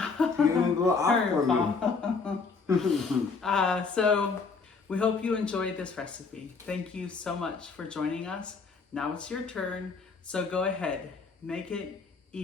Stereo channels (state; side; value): quieter; right; 4.7 dB